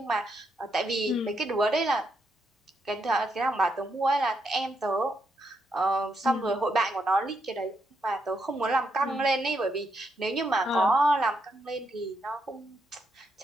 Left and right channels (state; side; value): normal; both; correlation 0.79